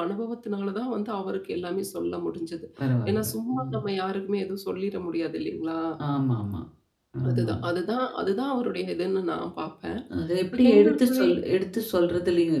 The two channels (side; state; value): both; identical; correlation 1.00